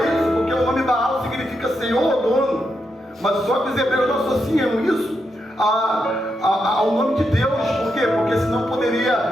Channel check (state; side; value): normal; both; correlation 0.83